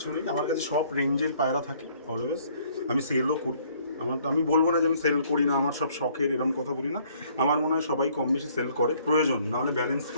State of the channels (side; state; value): both; inverted; correlation -0.62